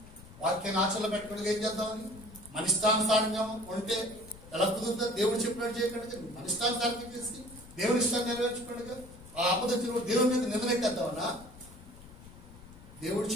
వాక్యాన్ని ఆచరణలో పెట్టుకోవడానికి ఏం చేద్దామని, మన ఇష్టానుసారంగా ఉంటే ఎలా కుదురుతుంది? దేవుడు చెప్పినట్టు చేయకుండా మన ఇష్టానుసారంగా చేసి దేవుని ఇష్టాన్ని నెరవేర్చుకోండి. ఆ ఆపదొచ్చిన దేవుని మీద నిందలెట్టేద్దామన్నా? దేవుడు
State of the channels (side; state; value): left; noise; rumble, 18 dB below the sound